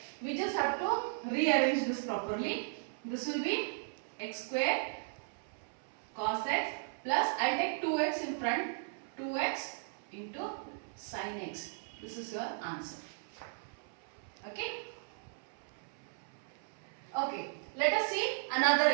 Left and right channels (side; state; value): left; silent; 54 dB below the other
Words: We just have to rearrange this properly. This will be x square cos x plus, I take 2x in front, 2x into sin x. This is your answer. Okay? Okay. Let us see another